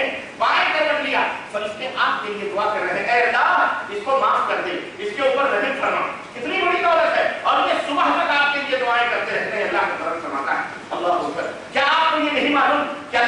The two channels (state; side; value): identical; both; correlation 1.00